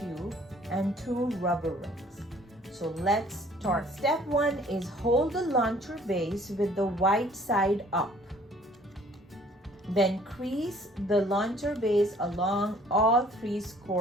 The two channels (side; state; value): both; normal; correlation 0.57